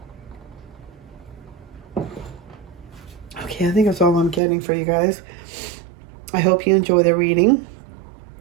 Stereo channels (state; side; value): drops out; left; at 4.4 s